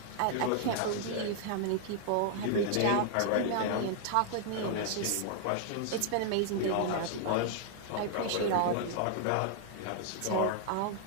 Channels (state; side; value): different; both; correlation -0.01